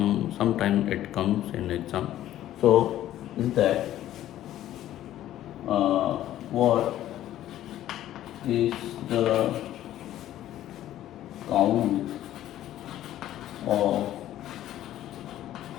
it comes in exam. So, is that what is the count of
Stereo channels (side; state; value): right; quieter; 12.9 dB